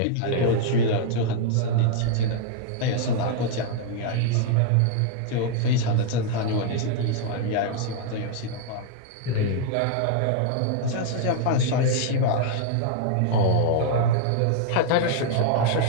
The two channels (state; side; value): different; both; correlation 0.00